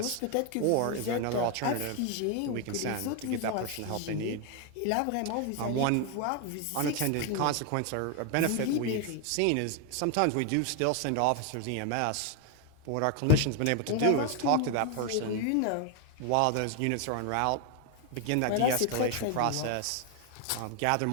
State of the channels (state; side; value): different; both; correlation 0.01